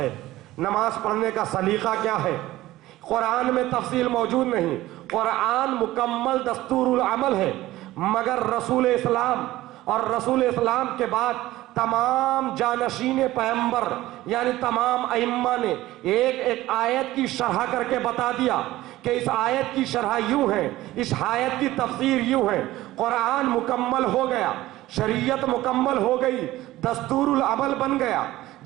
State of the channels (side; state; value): left; quieter; 16.4 dB